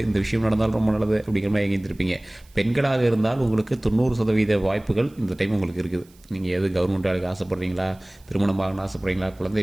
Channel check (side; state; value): right; noise; hiss, 29 dB below the sound